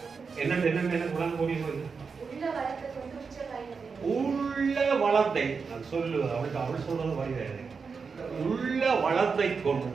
உள்ள வளத்தை சொல்லு அவள் சொல்றது வருகிறது. உள்ள வளத்தை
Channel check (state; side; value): quieter; left; 5.2 dB